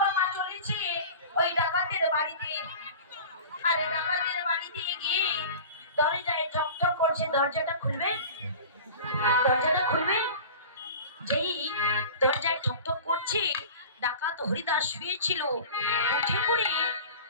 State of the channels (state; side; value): inverted; both; correlation -0.37